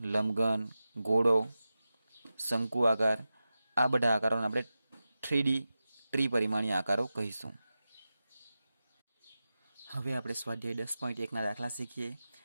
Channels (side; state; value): both; inverted; correlation -0.93